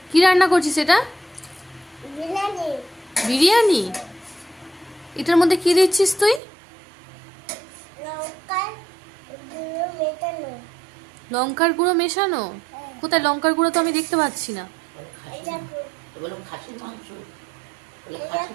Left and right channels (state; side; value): drops out; left; at 6.4 s